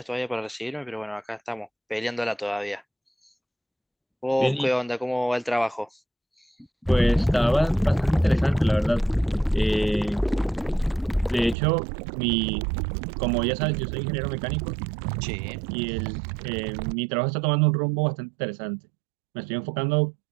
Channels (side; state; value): left; drops out; at 11.6 s